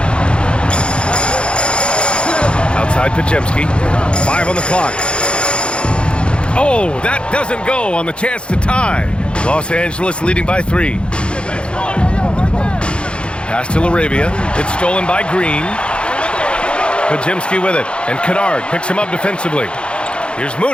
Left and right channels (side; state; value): right; late; 0.056 ms